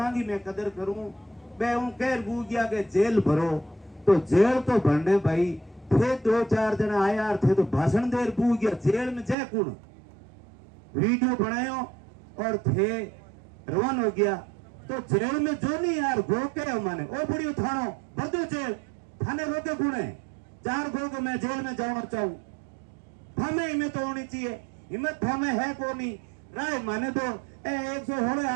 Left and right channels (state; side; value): drops out; left; at 9.3 s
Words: की मैं कदर करूं, मैं हूं कह बू गया के जेल भरो, तो जेल तो भरने भाई थे 2-4 जना आया थे तो भाषण देर बू गया, जेल में जय कुण वीडियो बनायो और थे रवान हो गया। तो जेल में जो नहीं यार गो के माने ओ बुढ़ी थानो बदो जेल थाने रोके गुणे 4 गो के मैं जेल में जाना चाहूं, थामे हिम्मत तो होनी चाहिए, हिम्मत थामे है को नहीं राय माने तो 116